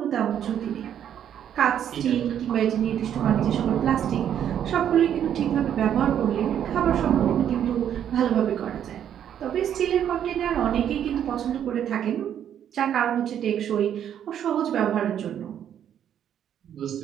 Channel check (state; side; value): quieter; left; 9.7 dB